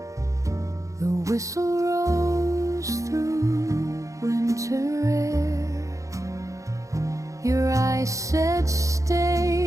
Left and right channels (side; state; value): left; late; 0.15 ms